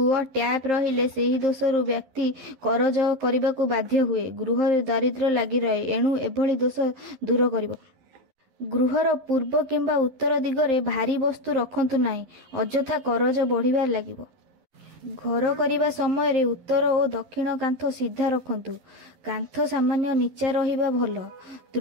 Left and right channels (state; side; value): late; left; 11 ms